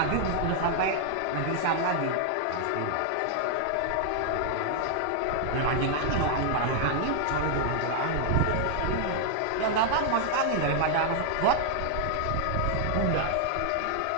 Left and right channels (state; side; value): different; both; correlation 0.00